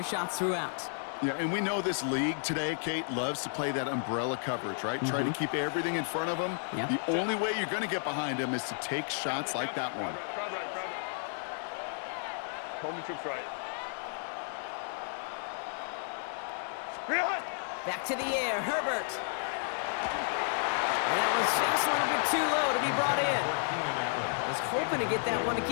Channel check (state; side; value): silent; right; digital silence